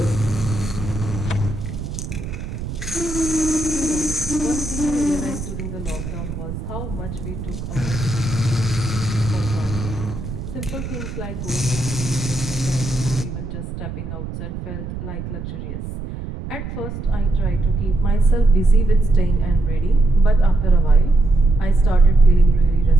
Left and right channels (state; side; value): noise; right; rumble, 8 dB below the sound